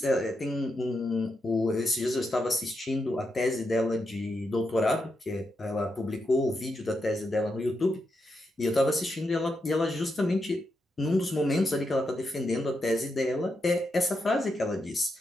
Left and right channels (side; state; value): both; normal; correlation 0.84